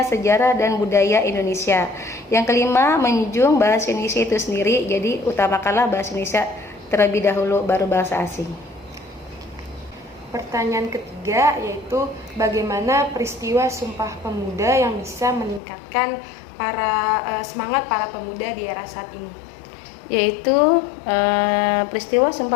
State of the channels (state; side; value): drops out; right; at 15.6 s